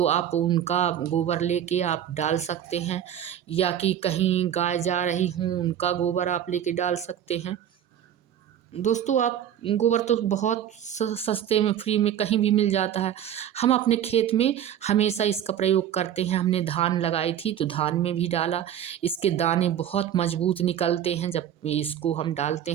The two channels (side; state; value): left; quieter; 10.2 dB